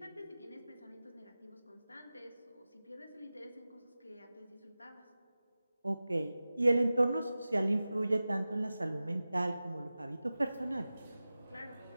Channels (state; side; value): inverted; both; correlation -0.96